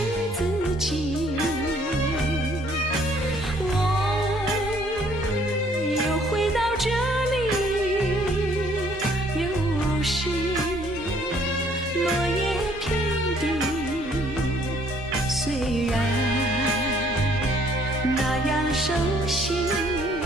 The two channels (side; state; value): both; normal; correlation 0.62